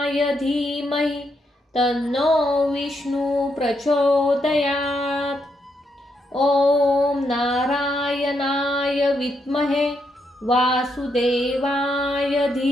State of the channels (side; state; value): both; normal; correlation 0.79